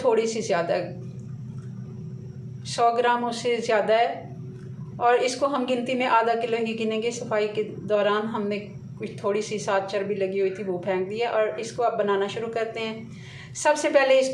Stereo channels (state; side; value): identical; both; correlation 1.00